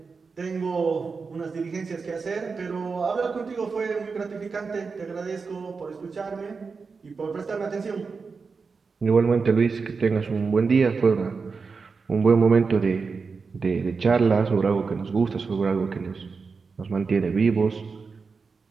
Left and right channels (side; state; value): left; quieter; 4.9 dB